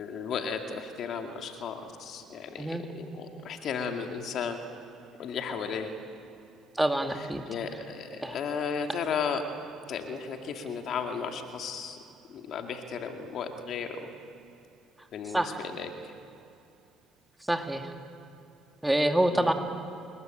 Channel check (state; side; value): normal; both; correlation 0.78